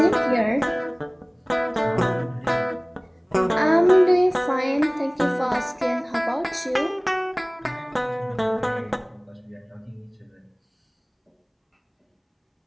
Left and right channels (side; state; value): both; identical; correlation 1.00